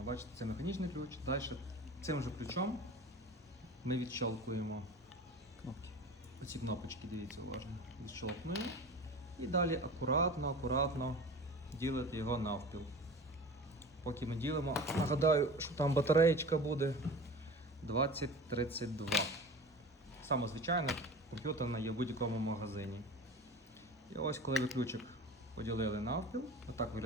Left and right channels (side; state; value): both; normal; correlation 0.36